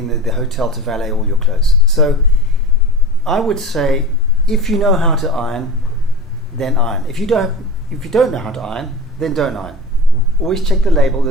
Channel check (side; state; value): both; normal; correlation 0.31